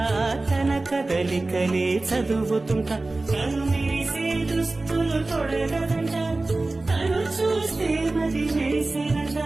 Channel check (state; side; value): quieter; left; 3.1 dB